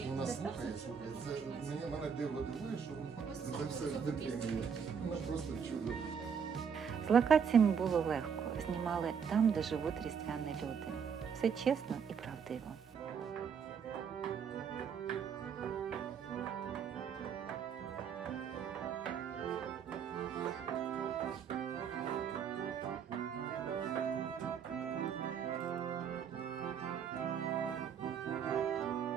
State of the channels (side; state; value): left; quieter; 7.0 dB